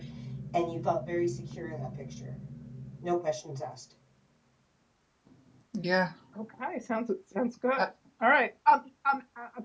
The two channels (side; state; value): both; identical; correlation 1.00